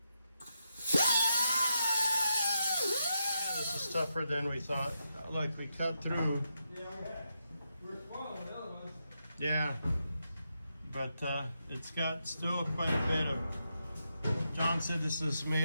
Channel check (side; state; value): both; inverted; correlation -0.83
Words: This is tougher than we thought. Look, we cut through. Yeah, we're spoiling the other ones. Yeah, but it's got still quite a bit of. John said this is